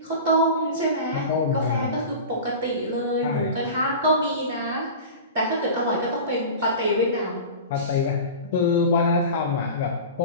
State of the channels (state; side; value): inverted; both; correlation -0.33